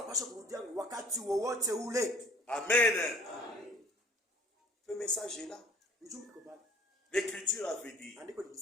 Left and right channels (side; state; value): both; normal; correlation 0.51